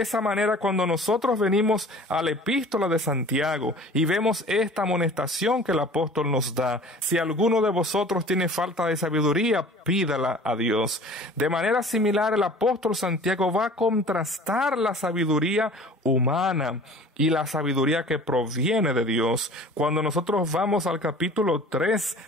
manera, cuando nosotros venimos a la epístola de Santiago y vemos esta amonestación que el apóstol nos da: si alguno de vosotros tiene falta de sabiduría, pídala a Dios. De manera similar, el apóstol Santiago va a contrastar la sabiduría humana y la sabiduría que proviene de Dios. Cuando nosotros vamos al capítulo 3,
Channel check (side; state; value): both; normal; correlation 0.46